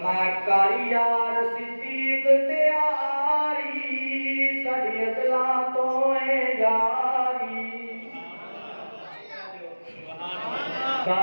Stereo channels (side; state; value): both; inverted; correlation -1.00